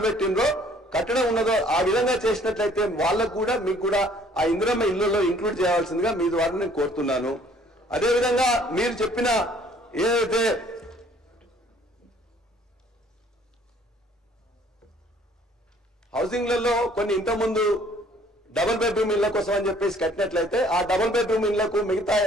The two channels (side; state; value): both; normal; correlation 0.58